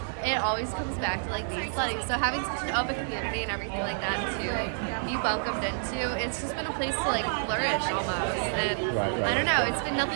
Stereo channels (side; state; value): left; silent; digital silence